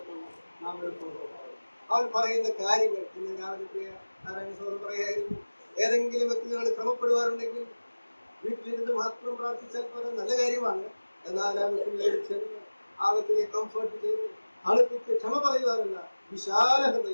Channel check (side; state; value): both; inverted; correlation -1.00